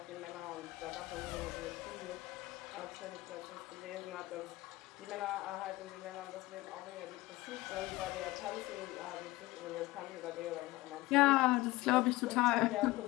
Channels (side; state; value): right; quieter; 19.4 dB